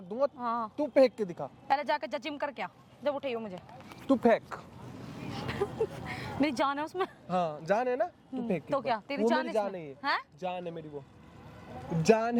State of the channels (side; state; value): both; identical; correlation 1.00